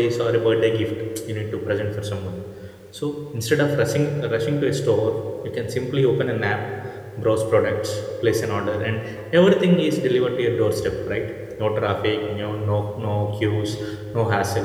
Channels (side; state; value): both; identical; correlation 1.00